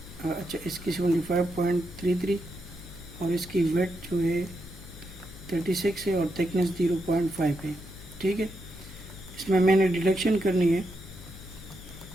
अच्छा इसकी 75.33 और इसकी वेट जो है 36 है और थिकनेस 0.5 है, ठीक है। इसमें मैंने डिडक्शन करनी है,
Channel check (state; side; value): noise; left; hum, 16 dB below the sound